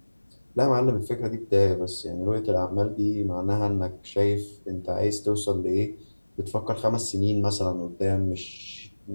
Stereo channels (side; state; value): both; inverted; correlation -1.00